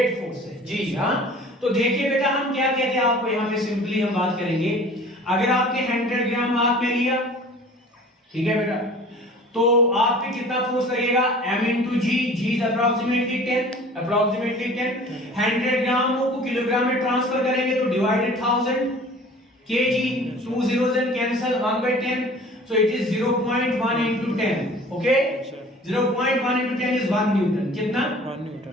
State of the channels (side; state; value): both; normal; correlation 0.46